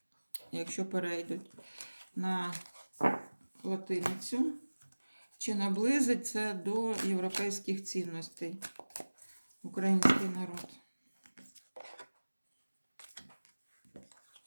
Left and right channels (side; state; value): both; inverted; correlation -1.00